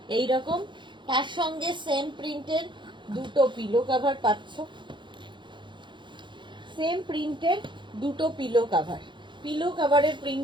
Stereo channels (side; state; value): left; late; 0.23 ms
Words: এইরকম, তার সঙ্গে সেম প্রিন্টের দুটো পিলো কাভার পাচ্ছ, সেম প্রিন্টের দুটো পিলো কাভার। পিলো কাভারের